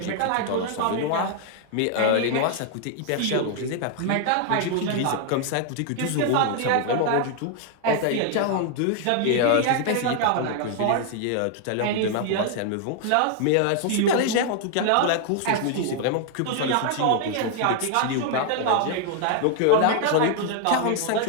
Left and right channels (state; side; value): different; both; correlation 0.00